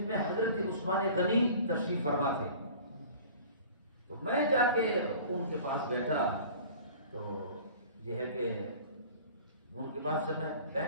میں حضرت عثمان غنی تشریف فرما تھے، تو میں جا کے ان کے پاس بیٹھا، تو یہ ہے کہ ان کے پاس جب میں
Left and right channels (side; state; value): both; inverted; correlation -0.44